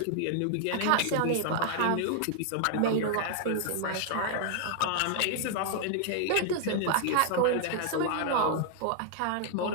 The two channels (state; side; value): different; both; correlation 0.00